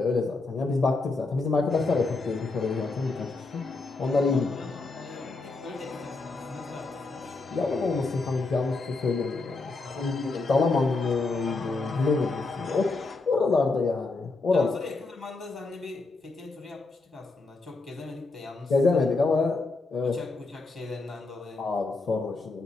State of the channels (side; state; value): right; quieter; 3.6 dB